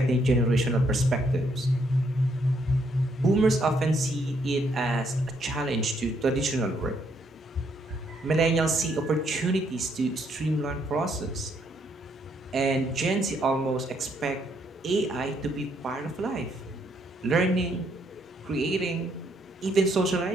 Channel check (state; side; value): normal; both; correlation 0.72